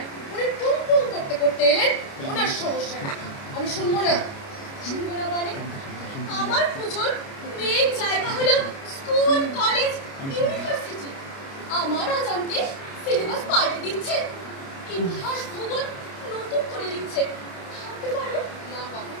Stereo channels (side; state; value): right; late; 29 ms